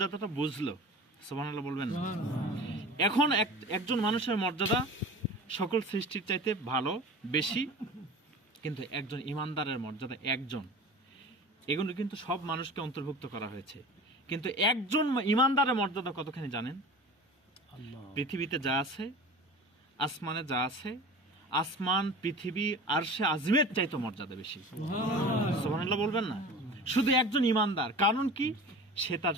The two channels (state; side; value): normal; both; correlation 0.37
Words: বুঝলো। সুবহানাল্লাহ বলবেন না? এখন একজন মানুষের মর্যাদা সকল সৃষ্টির চাইতে ভালো, বেশি, কিন্তু একজন ইমানদারের মর্যাদা একজন। এগুলো কিন্তু সব মানুষকে অন্তর্ভুক্ত করা হয়েছে, কিন্তু একজন ইমানদারের মর্যাদা কতখানি জানেন? পৃথিবীতে যা আছে, আসমানে যা আছে, আসমান, পৃথিবী, আরশে আজিমের চাইতে মর্যাদা বেশি। সুবহানাল্লাহ বলবেন না? শুধু একজন ইমানদার। কারণ কি? সে তার